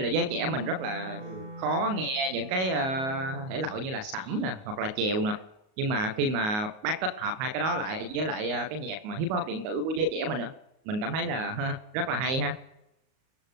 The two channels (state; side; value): late; left; 38 ms